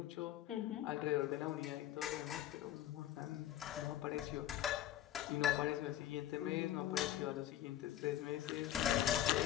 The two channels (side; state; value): right; quieter; 12.5 dB